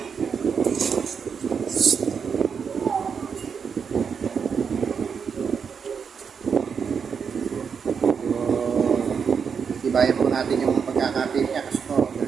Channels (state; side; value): quieter; left; 6.4 dB